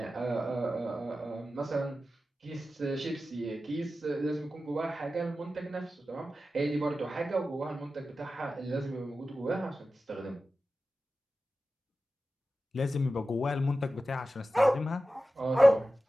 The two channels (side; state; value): both; normal; correlation 0.94